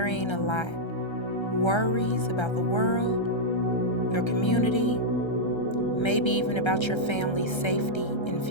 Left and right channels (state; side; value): late; right; 1.3 ms